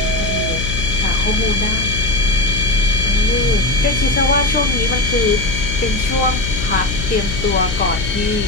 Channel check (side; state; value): left; noise; hum, 6 dB below the sound